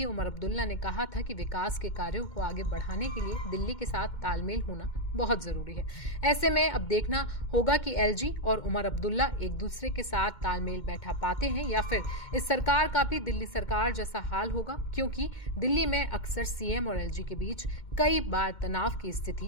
उमर अब्दुल्ला ने कहा था कि विकास के कार्यों को आगे बढ़ाने के लिए दिल्ली के साथ तालमेल होना बहुत जरूरी है। ऐसे में अब देखना होगा कि एलजी और उमर अब्दुल्ला एक दूसरे के साथ तालमेल बैठा पाते हैं या फिर इस सरकार का भी दिल्ली सरकार जैसा हाल होगा, क्योंकि दिल्ली में अक्सर सीएम और एलजी के बीच कई बार तनाव की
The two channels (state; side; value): late; right; 2.1 ms